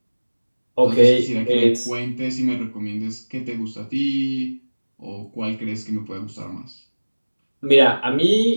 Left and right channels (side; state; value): both; inverted; correlation -1.00